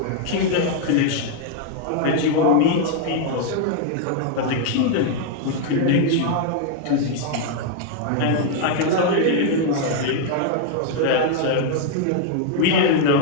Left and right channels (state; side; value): different; both; correlation 0.00